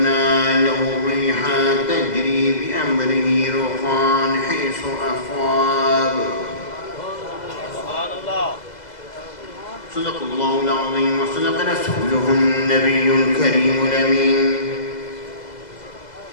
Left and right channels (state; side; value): late; right; 2.0 ms